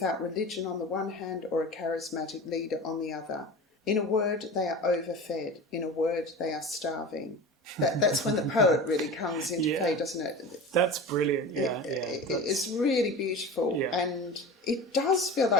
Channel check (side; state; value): both; normal; correlation 0.33